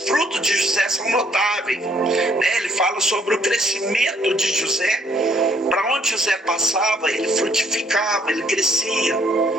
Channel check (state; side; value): normal; both; correlation 0.66